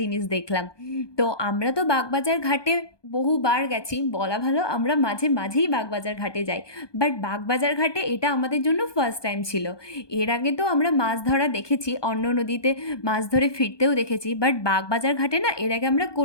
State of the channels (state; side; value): late; right; 1.2 ms